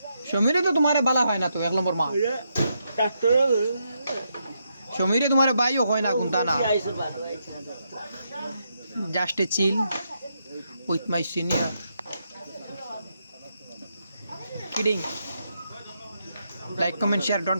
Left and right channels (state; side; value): inverted; both; correlation -0.81